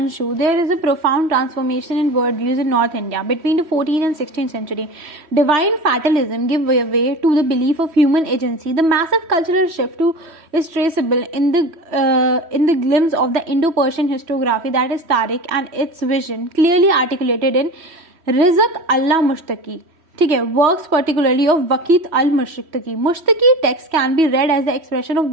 there is a profound transformation in world views in north India between the 14th and 16th century. Divine fatalism give way to the belief of human agency. The massive cultural shift is traceable in the glimpse of the Indo-Persian historiography, that is Tariq, and its vision clearly articulated in Rizq Allah Mushtaki. ठीक है, works particularly of Waqiat al Mushtaqi. Mushtaqi text can be read as the expression of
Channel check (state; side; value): late; left; 3.1 ms